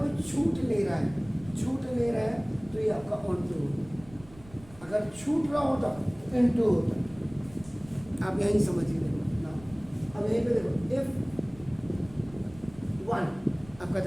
छूट नहीं रहा है, छूट नहीं रहा है तो ये आपका ऑन टू होगा, अगर छूट रहा होता तो इन टू होता, आप यहीं समझिए ना। अब यहीं पे देखो इफ 1 आपका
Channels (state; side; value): noise; right; rumble, 21 dB below the sound